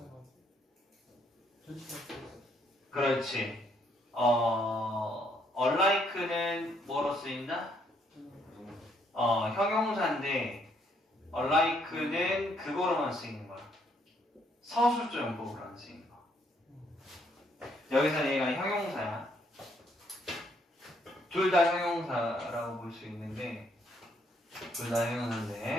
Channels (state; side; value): normal; both; correlation 0.70